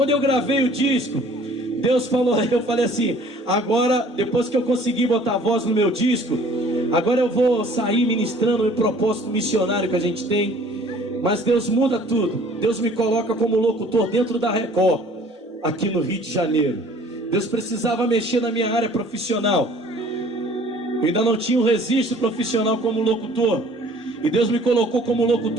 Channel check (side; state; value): both; normal; correlation 0.52